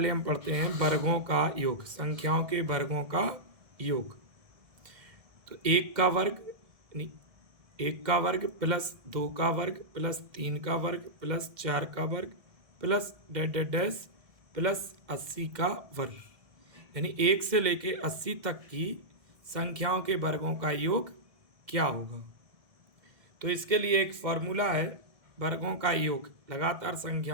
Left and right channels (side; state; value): left; late; 1.7 ms